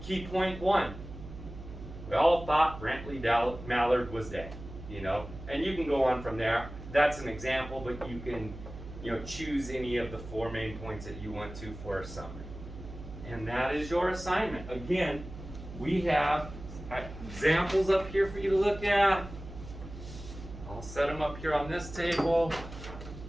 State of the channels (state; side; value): noise; right; hum, 12 dB below the sound